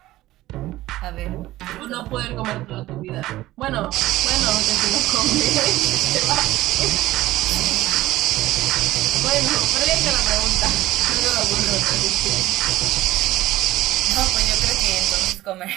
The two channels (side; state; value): left; quieter; 16.4 dB